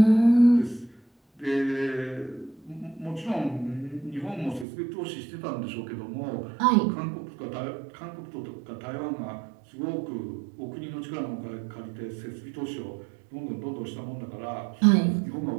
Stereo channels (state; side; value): drops out; left; at 4.7 s